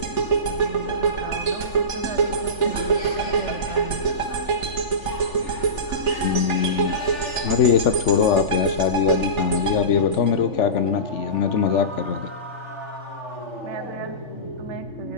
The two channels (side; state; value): right; late; 3.4 ms